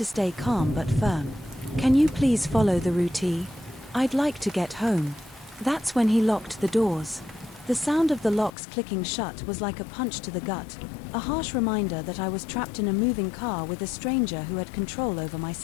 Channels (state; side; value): drops out; right; at 8.5 s